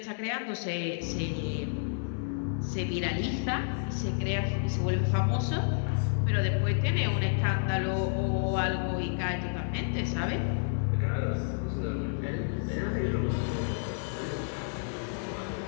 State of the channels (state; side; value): silent; right; digital silence